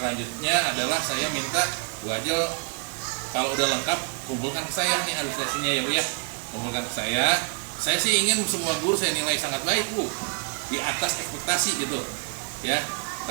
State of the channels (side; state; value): left; quieter; 38.2 dB